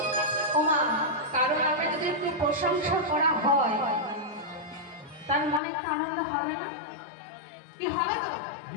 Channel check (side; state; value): right; drops out; at 5.6 s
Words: ওমা, কারণ আমি যদি একটু প্রশংসা করা হয় তার মনে একটা আনন্দ হবে না? কি হবে তো?